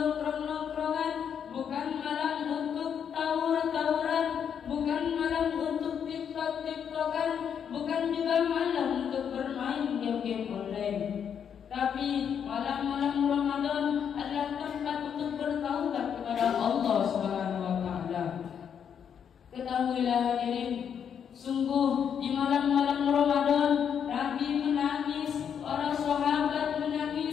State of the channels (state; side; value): quieter; right; 7.9 dB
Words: bukan malam untuk tawur-tawuran, bukan malam untuk TikTok-TikTokan, bukan juga malam untuk bermain game-game online. Tapi malam-malam Ramadan adalah tempat untuk bertaubat kepada Allah Subhanahu wa taala. Ketahuilah hadirin, sungguh di malam-malam Ramadan Nabi menangis, para sahabat